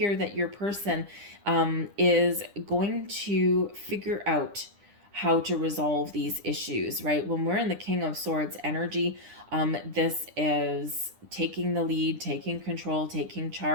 that your person is going to figure out how to resolve these issues, right? When we're in the King of Swords energy, this is taking the lead, taking control, taking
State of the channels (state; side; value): late; left; 9.9 ms